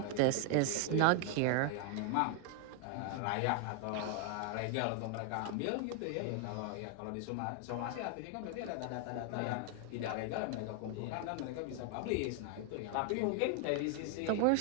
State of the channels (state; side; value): different; both; correlation 0.00